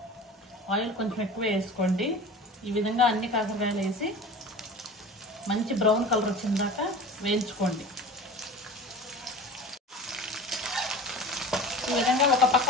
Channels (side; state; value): both; normal; correlation 0.37